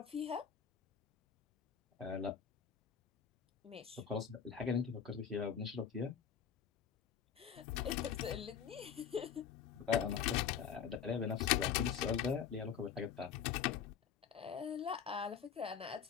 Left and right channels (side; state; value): right; quieter; 7.7 dB